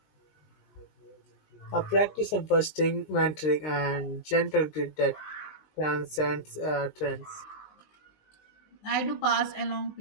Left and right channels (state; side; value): late; right; 19 ms